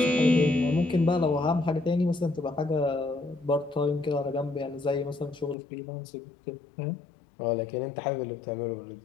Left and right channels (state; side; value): drops out; right; at 5.6 s